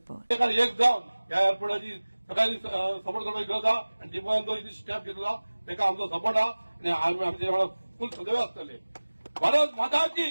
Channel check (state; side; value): inverted; both; correlation -1.00